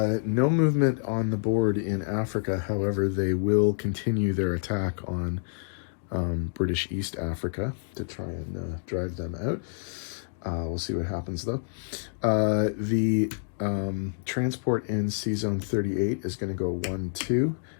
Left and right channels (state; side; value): silent; right; digital silence